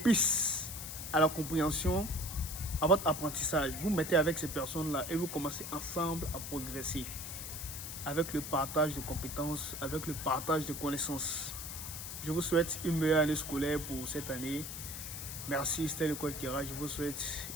à la compréhension, à votre apprentissage. Vous mettez avec ces personnes-là et vous commencez ensemble à progresser avec le partage de compétences, avec le partage de connaissances. Je vous souhaite une meilleure année scolaire pour cette année. Merci, c'était le coach Kira. Je vous souhaite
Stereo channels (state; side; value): noise; left; hiss, 7 dB below the sound